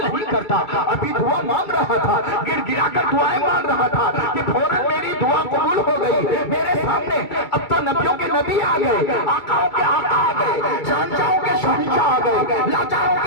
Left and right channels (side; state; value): right; late; 2.2 ms